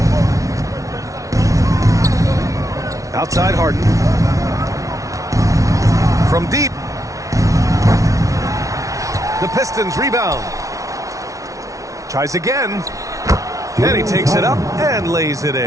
Outside, Harden. From deep. The Pistons rebound. Tries again. And he takes it up and lays it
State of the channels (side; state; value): left; late; 0.16 ms